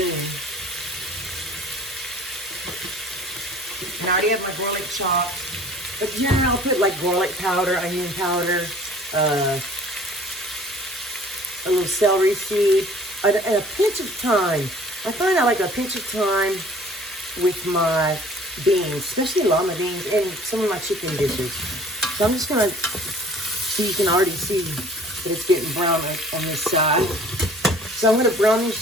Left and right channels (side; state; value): both; normal; correlation 0.50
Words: And I already have my garlic chopped. But generally I'll put like garlic powder, onion powder, a little celery seed, and a pinch of thyme. I find I like a pinch of thyme with my beans, especially lima beans, and some of my chicken dishes. So I'm just gonna, so you can already see that it's getting brown on this side. So I'm gonna brown this